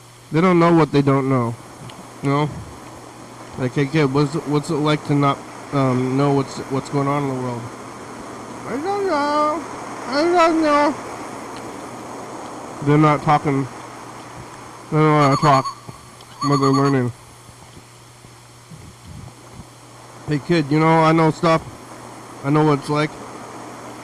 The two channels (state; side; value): identical; both; correlation 1.00